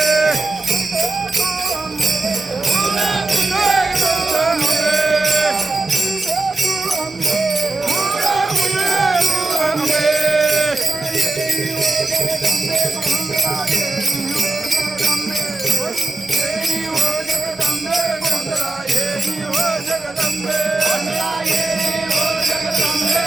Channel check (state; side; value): quieter; left; 3.2 dB